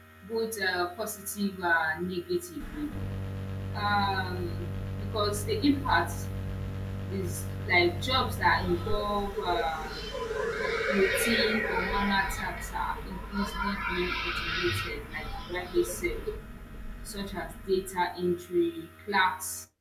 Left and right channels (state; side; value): identical; both; correlation 1.00